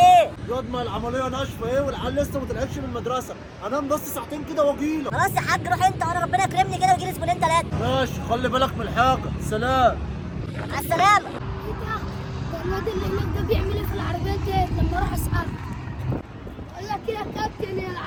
ياض ما العمليه ناشفه ايه والعيال لسه ما طلعتش من المدرسه، انام بس ساعتين كده واجيلك. خلاص يا حاج روح انت وانا ربنا يكرمني كده ويجي لي زبونين 3. ماشي خلي بالك من الحاجه. سلام. مع السلامه. ده الواد اللي هناك ده بيعمل ايه في العربيات ديت؟ لما اروح اساله اقول لك ايه يا كابتن، هي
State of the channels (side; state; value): both; identical; correlation 1.00